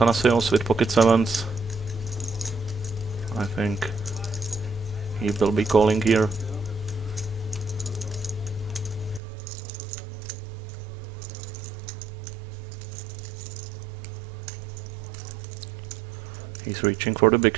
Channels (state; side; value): drops out; left; at 9.2 s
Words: with pocket sevens. I think he will be calling here. He's reaching for the